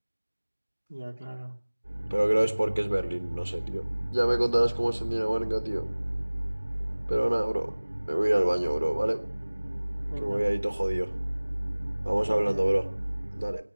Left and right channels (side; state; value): both; inverted; correlation -1.00